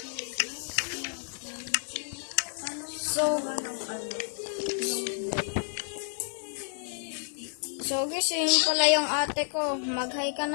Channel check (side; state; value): right; silent; digital silence